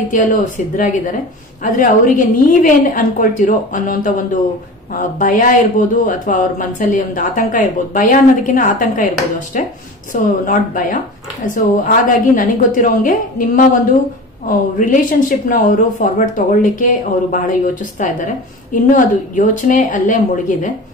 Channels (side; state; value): both; normal; correlation 0.34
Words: ಸಿದ್ಧರಾಗಿದ್ದಾರೆ. ಆದ್ರೆ ಅವರಿಗೆ ನೀವೇನ್ ಅನ್ಕೊಳ್ತಿರೋ ಅನ್ನೋಂತ ಒಂದು ಭಯ ಇರ್ಬೋದು, ಅಥವಾ ಅವ್ರ ಮನಸ್ಸಲ್ಲಿ ಒಂದು ಆತಂಕ ಇರ್ಬೋದು. ಭಯ ಅನ್ನೋದಕ್ಕಿಂತ ಆತಂಕ ಇರ್ಬೋದು ಅಷ್ಟೇ. ಸೊ ನಾಟ್ ಭಯ. ಸೊ ಹಾಗಾಗಿ ನನಗೆ ಗೊತ್ತಿರೋಂಗೆ ನಿಮ್ಮ ಒಂದು ರಿಲೇಶನ್ಶಿಪ್ ನ ಅವರು ಫಾರ್ವರ್ಡ್ ತಗೊಳ್ಳಿಕ್ಕೆ ಅವರು ಬಹಳ ಯೋಚಿಸ್ತಾ ಇದ್ದಾರೆ. ಇನ್ನು ಅದು ಯೋಚನೆ ಅಲ್ಲೇ ಮುಳುಗಿದೆ.